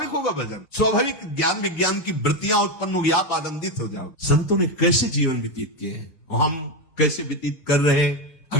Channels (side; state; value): right; late; 6.5 ms